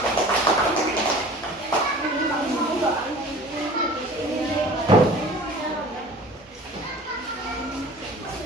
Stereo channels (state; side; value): normal; both; correlation 0.43